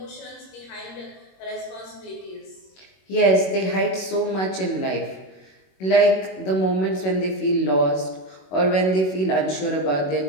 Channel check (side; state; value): right; late; 21 ms